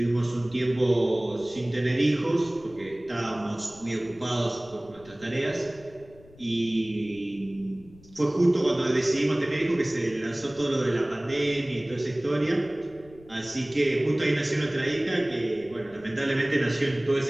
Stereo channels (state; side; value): noise; left; rumble, 24 dB below the sound